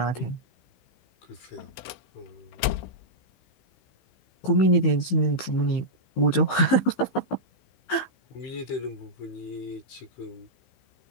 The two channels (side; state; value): right; late; 15 ms